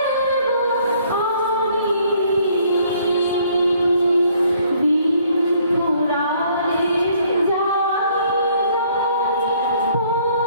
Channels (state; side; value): inverted; both; correlation -0.63